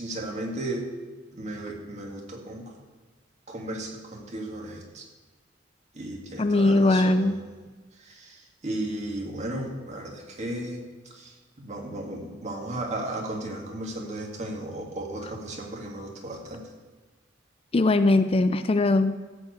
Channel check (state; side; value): normal; both; correlation 0.71